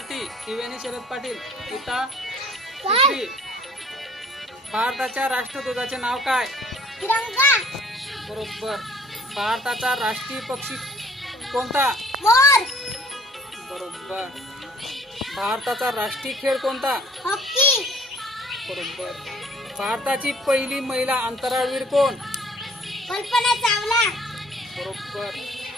त्रिवेणी शरद पाटील इता तिसरी। भारताच्या राष्ट्रध्वजाचे नाव काय? तिरंगा। बरोबर। भारताचा राष्ट्रीय पक्षी कोणता? मोर। बरोबर। भारताचा राष्ट्रीय खेळ कोणता? हॉकी। बरोबर। भारताची पहिली महिला अंतराळवीर कोण? कल्पना चावला। बरोबर।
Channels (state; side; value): normal; both; correlation 0.55